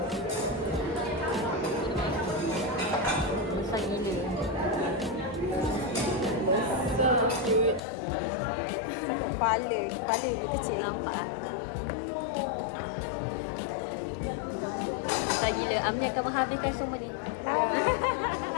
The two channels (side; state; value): right; drops out; at 7.8 s